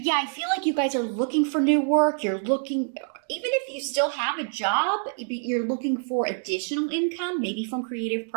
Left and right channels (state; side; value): silent; left; digital silence